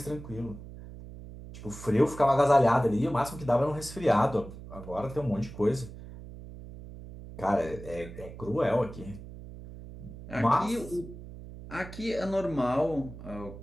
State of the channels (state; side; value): noise; right; hum, 14 dB below the sound